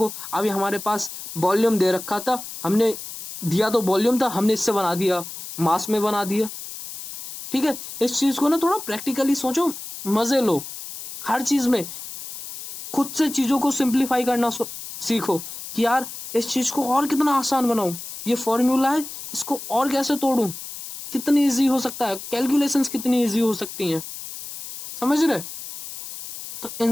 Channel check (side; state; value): left; noise; hiss, 11 dB below the sound